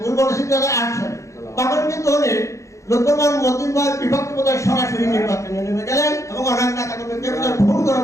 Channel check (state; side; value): late; right; 0.15 ms